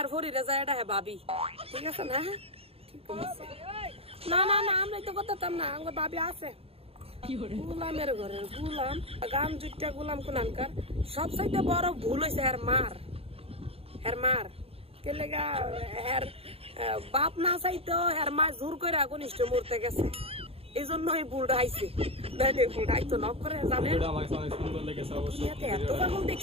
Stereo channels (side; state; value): left; late; 0.28 ms